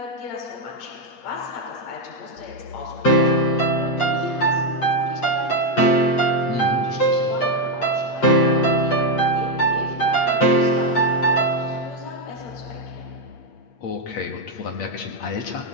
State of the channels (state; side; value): late; right; 8.5 ms